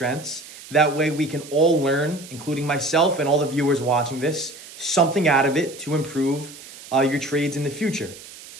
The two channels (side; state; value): right; noise; hiss, 17 dB below the sound